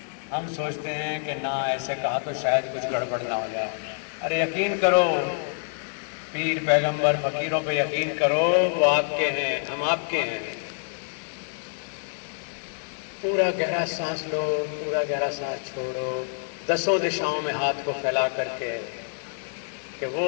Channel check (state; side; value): silent; right; digital silence